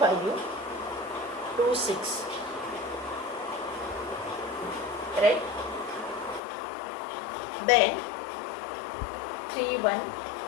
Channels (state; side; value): drops out; right; at 6.4 s